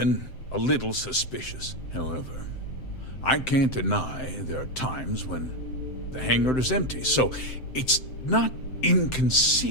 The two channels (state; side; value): late; right; 7.7 ms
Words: a little suspicious. However, I can't deny there are times when the hangar is empty, so it's not